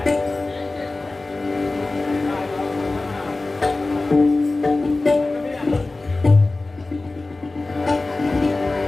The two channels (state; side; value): quieter; right; 3.2 dB